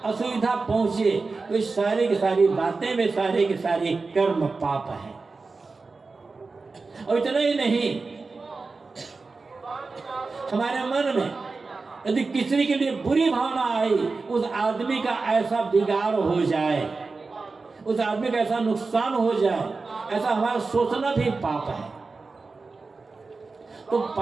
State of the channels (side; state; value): left; quieter; 4.0 dB